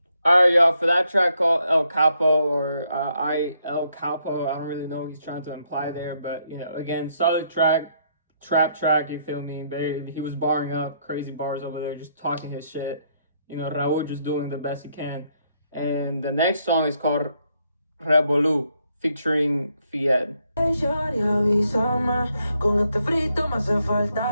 Alright, y'all, for that track called El Capo, or El Capo, I don't really know what he's trying to imply there, but, you know, again, solid track, trap track, you feel me? He was barring up, crazy bars over there, just talking his shit. You know, Rauw just doing the best he can. And the next song is called Revolú, featuring J.E.T. Con este frito me hace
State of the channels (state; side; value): inverted; both; correlation -0.74